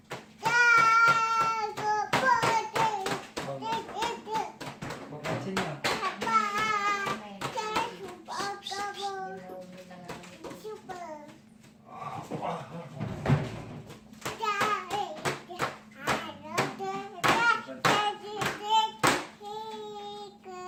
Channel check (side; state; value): both; identical; correlation 1.00